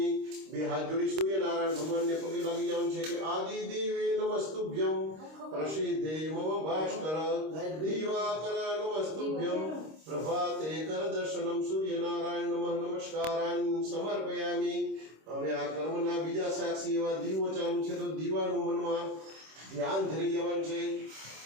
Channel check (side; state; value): left; late; 26 ms